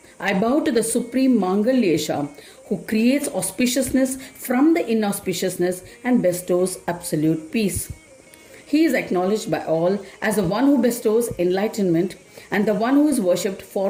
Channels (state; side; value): identical; both; correlation 1.00